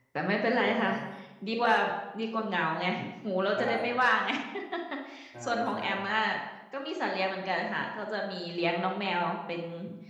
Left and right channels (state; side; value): identical; both; correlation 1.00